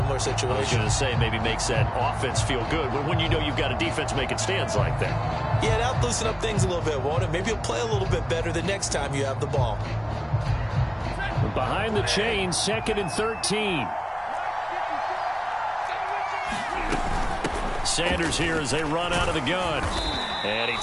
situation. I was going to say, maybe makes that offense feel good when you know you've got a defense making stands like that. Yeah, that'll loosen up things a little bit, won't it? Maybe you'll play a little bit better the next time you have the ball. Behind the chain, 2nd and 13. Sanders here as they run out of the gun. And he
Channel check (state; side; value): identical; both; correlation 1.00